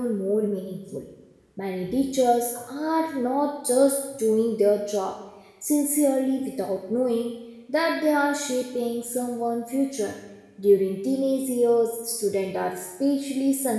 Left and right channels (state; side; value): identical; both; correlation 1.00